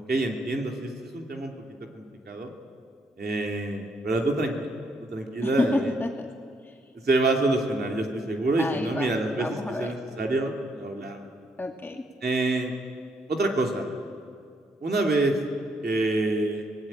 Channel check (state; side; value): normal; both; correlation 0.73